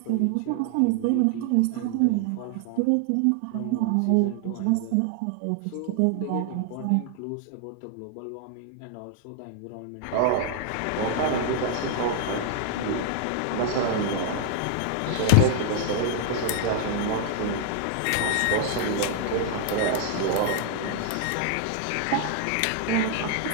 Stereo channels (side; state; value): both; different; correlation 0.00